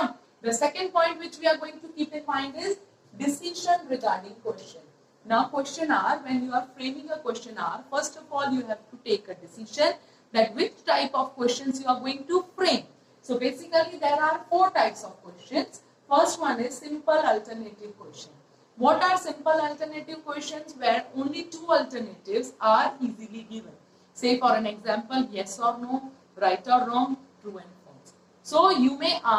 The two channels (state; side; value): identical; both; correlation 1.00